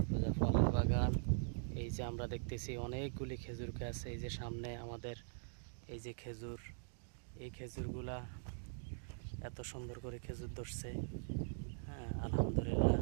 ফলের বাগান। এই যে আমরা দেখতেছি অনেকগুলি খেজুর গাছ, এই যে সামনে আমাদের এই যে খেজুর, এই খেজুরগুলা এত সুন্দর করে খেজুর ধরছে। হ্যাঁ, আলহামদুলিল্লাহ,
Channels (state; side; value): silent; left; digital silence